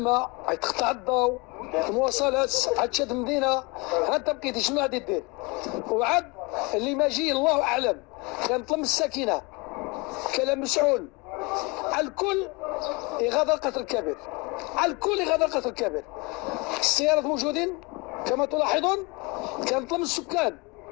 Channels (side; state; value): right; quieter; 26.9 dB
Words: تقطع الضوء، المواصلات، عاد تشد مدينه، انت بقيتي شنو غادي دير؟ وعاد اللي ما جي الله اعلم. كنطلب السكينه، كلام مسؤول، الكل يغادر قطر الكبير، الكل يغادر قطر الكبير. السيارات موجودين كما تلاحظون. كنطلب السكان